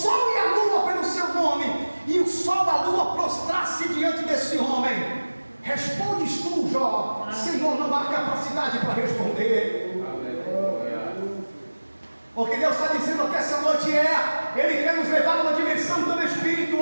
e a lua pelo seu nome, e o sol e a lua prostrar-se diante desse homem? Respondes tu, Jó: Senhor, não há capacidade para responder. O que Deus está dizendo que essa noite Ele quer nos levar a uma dimensão tão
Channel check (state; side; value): inverted; both; correlation -1.00